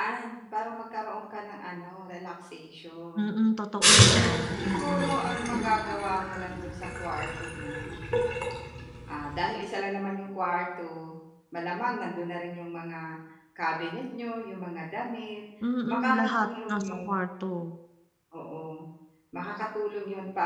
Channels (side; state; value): both; identical; correlation 1.00